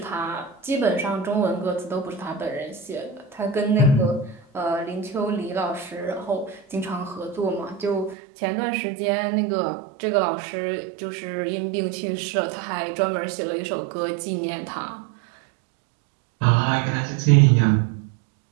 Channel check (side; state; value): left; drops out; at 8.2 s